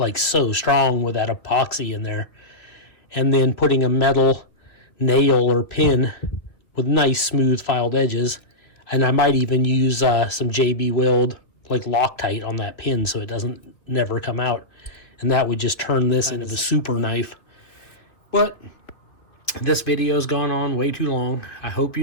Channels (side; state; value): right; late; 2.3 ms